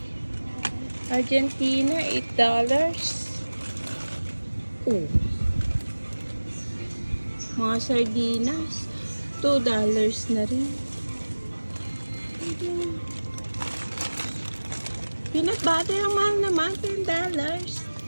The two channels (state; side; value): inverted; both; correlation -1.00